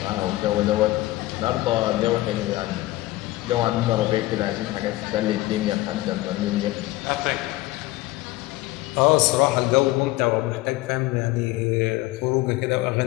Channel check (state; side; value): quieter; right; 18.3 dB